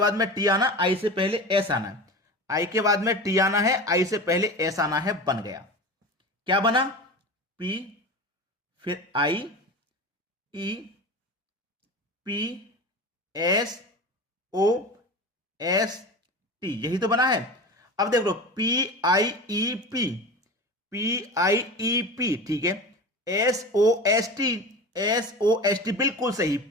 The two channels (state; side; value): normal; both; correlation 0.31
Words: में टी आना, आई से पहले एस आना है, आई के बाद में टी आना है, आई से पहले एस आना है। बन गया, क्या बना? पी, फिर I, E, P, S, O, S, T, यही तो बना है। अब देख लो, P I E P, P I E P, ठीक है। S O S T, S O S T, बिल्कुल सही।